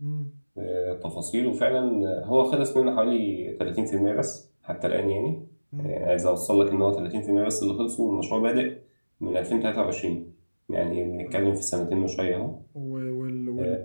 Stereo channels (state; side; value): inverted; both; correlation -1.00